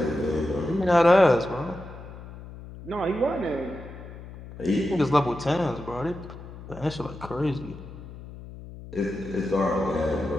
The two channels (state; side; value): noise; left; hum, 14 dB below the sound